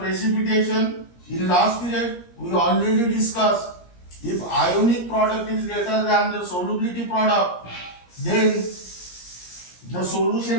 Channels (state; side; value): late; right; 17 ms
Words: In last period we already discussed, if ionic product is greater than the solubility product, then the